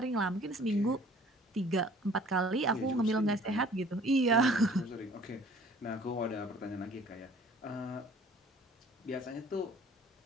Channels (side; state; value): both; normal; correlation 0.52